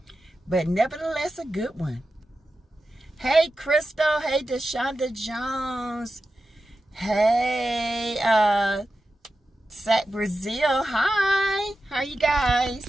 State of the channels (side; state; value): both; normal; correlation 0.92